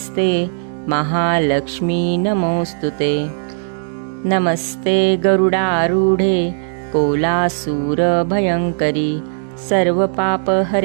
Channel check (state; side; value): silent; left; digital silence